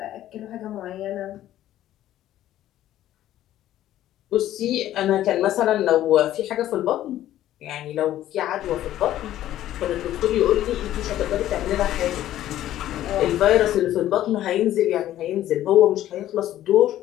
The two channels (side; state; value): right; quieter; 13.0 dB